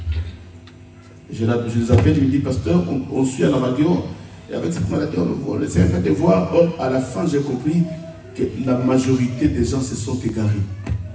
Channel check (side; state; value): both; identical; correlation 1.00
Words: Je les appelle, je me dis, pasteur, on suit à la radio, et avec cette maladie, on essaie un peu de voir. Or, à la fin, j'ai compris que la majorité des gens se sont égarés.